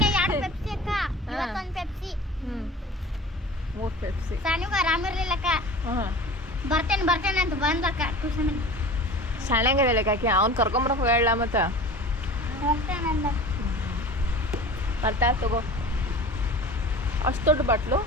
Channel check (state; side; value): normal; both; correlation 0.38